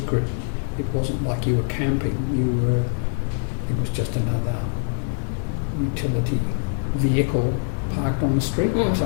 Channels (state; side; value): silent; right; 63 dB below the other